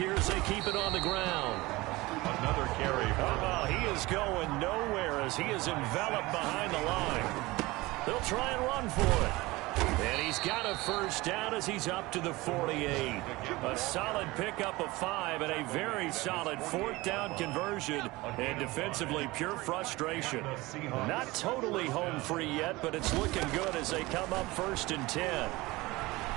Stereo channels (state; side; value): quieter; left; 21.0 dB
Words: as they keep it on the ground. Another carry. Oh, he is going nowhere as he is enveloped behind the line. They'll try and run for it. And he's got a first down as he's up to the 48. A solid pickup of 5 and a very solid 4th down conversion. And defensively, pure frustration. Not totally home free yet, but it's looking good as they come up 1st and 10.